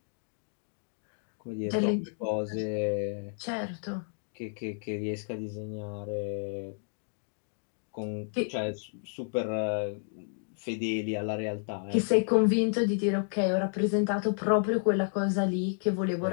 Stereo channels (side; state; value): right; silent; digital silence